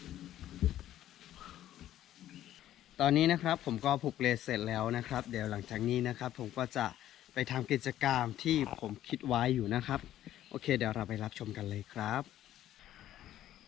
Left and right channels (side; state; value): right; quieter; 12.6 dB